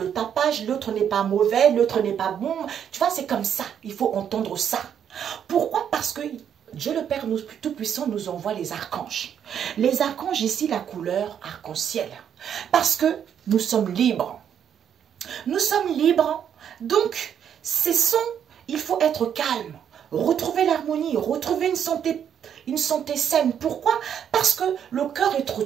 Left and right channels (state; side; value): quieter; left; 8.7 dB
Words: tapage, l'autre n'est pas mauvais, l'autre n'est pas bon. Tu vois, c'est comme ça. Il faut entendre ça. Pourquoi? Parce que Dieu le Père Tout-Puissant nous envoie les archanges. Les archanges, ici, la couleur arc-en-ciel. Parce que nous sommes libres. Nous sommes libres. Donc, il faut être calme. Retrouver l'harmonie, retrouver une santé saine. Pourquoi? Parce que le cœur est trop